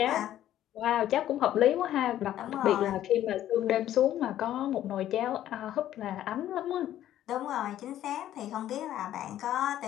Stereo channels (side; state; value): right; quieter; 12.3 dB